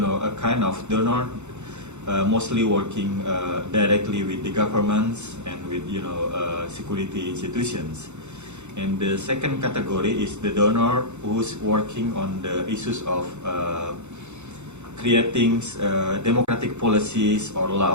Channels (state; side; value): late; left; 0.83 ms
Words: kind of donor mostly working directly with the governments and with security institutions. And the second category is the donor who's working on the issues of creating democratic policies or